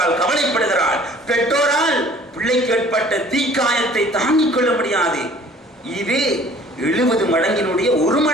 கவலைப்படுகிறாள். பெற்றோரால் பிள்ளைக்கு ஏற்பட்ட தீக்காயத்தை தாங்கிக் கொள்ள முடியாது. இது 70 மடங்கினுடைய ஒரு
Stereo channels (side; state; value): both; normal; correlation 0.52